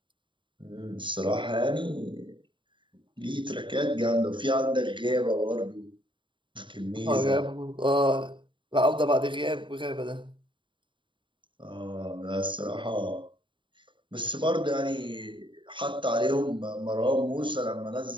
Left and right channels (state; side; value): late; left; 0.24 ms